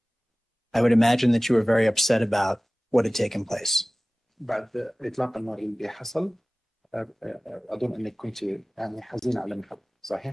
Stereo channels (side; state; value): both; normal; correlation 0.98